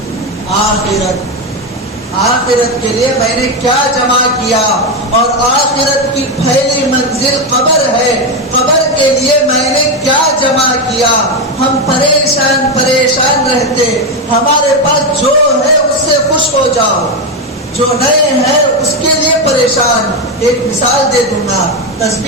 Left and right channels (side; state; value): both; normal; correlation 0.10